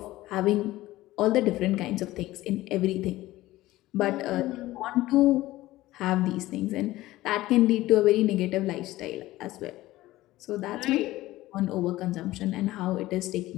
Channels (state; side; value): quieter; right; 16.9 dB